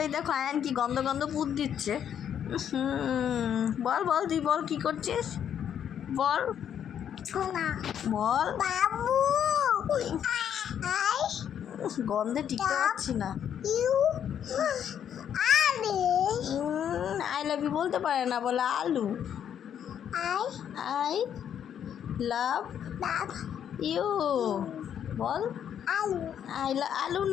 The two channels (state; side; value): quieter; right; 9.1 dB